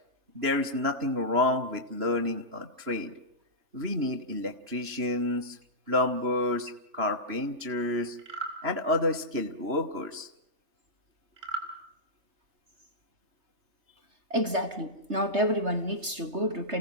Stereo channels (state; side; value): late; left; 3.3 ms